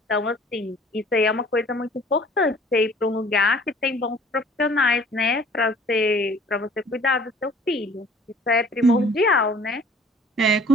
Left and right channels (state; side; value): normal; both; correlation 0.53